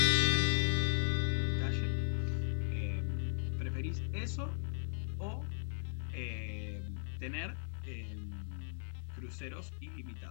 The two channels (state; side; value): silent; right; digital silence